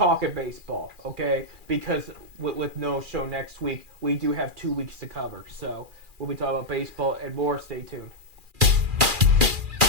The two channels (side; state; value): left; late; 2.4 ms